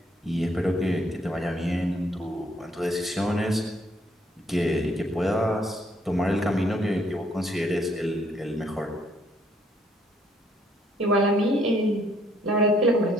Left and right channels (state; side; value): normal; both; correlation 0.67